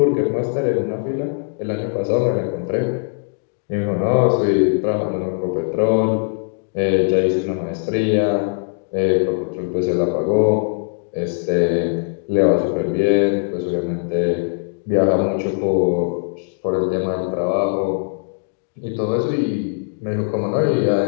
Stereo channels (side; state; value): right; silent; digital silence